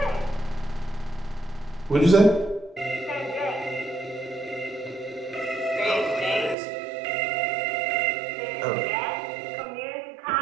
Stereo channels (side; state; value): left; drops out; at 6.6 s